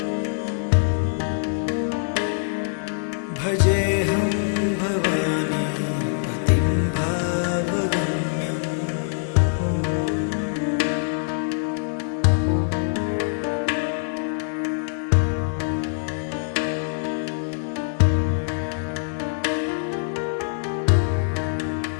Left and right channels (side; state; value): right; silent; digital silence